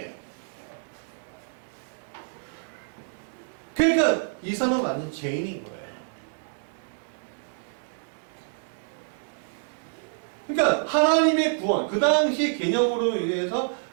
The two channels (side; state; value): left; silent; 60 dB below the other